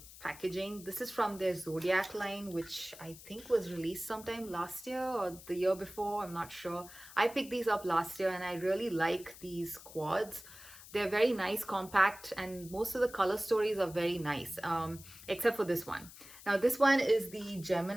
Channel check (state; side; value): noise; left; hiss, 17 dB below the sound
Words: packaging. This is from their Zodiac line, which I think was released sometime last year or the year before. I'm not sure. I picked these up last year, and I really like these quads. They're very nice, compact, and most of the color stories are very nice, except for this one. Now, this one is the